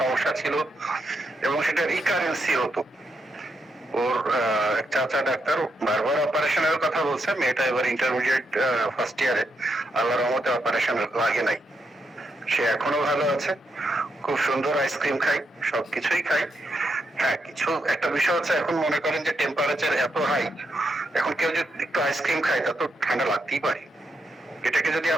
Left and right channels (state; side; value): normal; both; correlation 0.82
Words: ছিল, এবং সেটা রিকারেন্সি হতো। ওর এক চাচা ডাক্তার বারবার অপারেশনের কথা বলছে, মেয়েটা এবার ইন্টারমিডিয়েট ফার্স্ট ইয়ারে, আল্লাহর রহমতে অপারেশন লাগে নাই। সে এখনো ভালো আছে, খুব সুন্দর আইসক্রিম খাই, সবকিছুই খাই। হ্যাঁ, কিছু একটা বিষয় হচ্ছে, এখন মনে করেন যে টেম্পারেচার এত হাই, এখন কেউ যদি একটু আইসক্রিম খায় তা তো ঠান্ডা লাগতেই পারে। এটাকে যদি